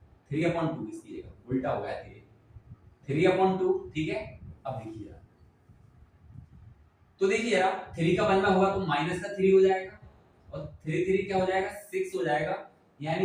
इसकी जगह उल्टा हो गया 3/2, ठीक है। अब देखिए तो देखिए यार 3 का 1 में होगा तो -3 हो जाएगा और 3 3 क्या हो जाएगा 6 हो जाएगा,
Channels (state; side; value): identical; both; correlation 1.00